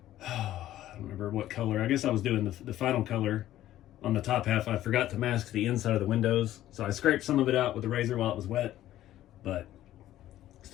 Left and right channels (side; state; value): right; quieter; 13.5 dB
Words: I don't remember what color. I guess I was doing the final color on the top half. I forgot to mask the inside of the windows, so I scraped some of it out with the razor while it was wet, but